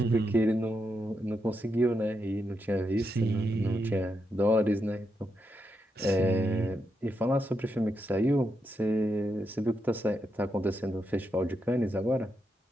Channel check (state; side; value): normal; both; correlation 0.83